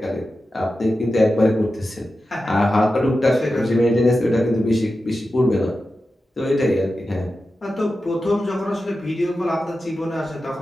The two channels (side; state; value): both; normal; correlation 0.92